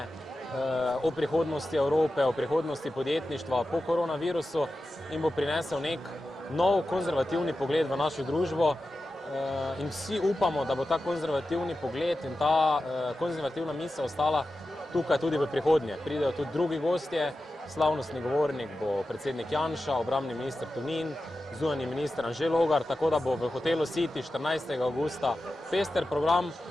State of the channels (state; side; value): normal; both; correlation 0.92